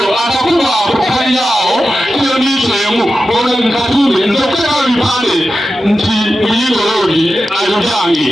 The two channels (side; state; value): both; normal; correlation 0.92